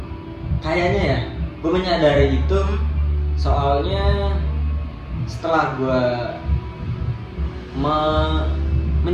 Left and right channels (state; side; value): identical; both; correlation 1.00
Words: Kayaknya ya, gue menyadari itu soalnya setelah gue